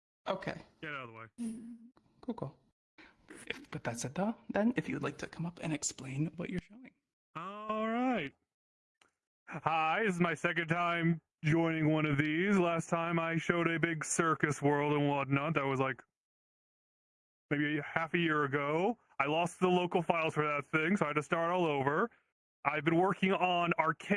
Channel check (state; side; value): identical; both; correlation 1.00